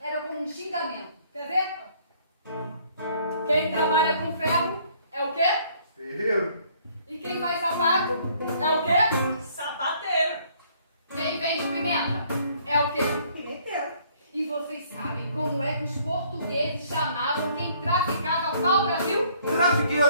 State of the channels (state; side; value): inverted; both; correlation -0.62